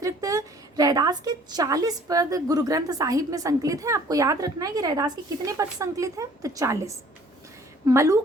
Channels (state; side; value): normal; both; correlation 0.55